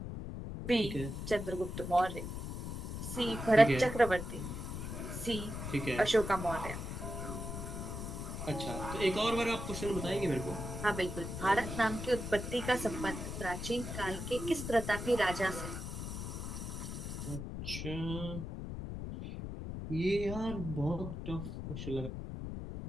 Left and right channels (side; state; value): left; noise; rumble, 6 dB below the sound